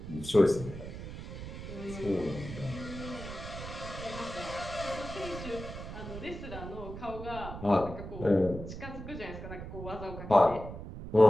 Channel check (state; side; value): noise; right; rumble, 9 dB below the sound